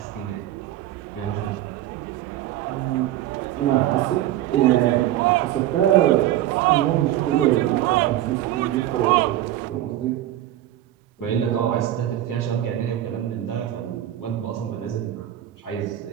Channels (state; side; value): quieter; left; 13.3 dB